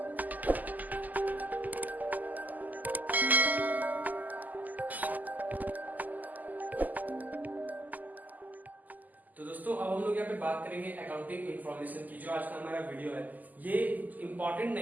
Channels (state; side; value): late; left; 0.082 ms